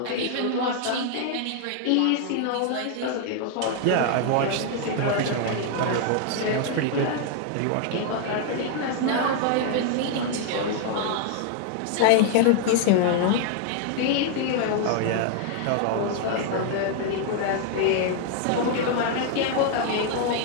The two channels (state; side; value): different; both; correlation 0.00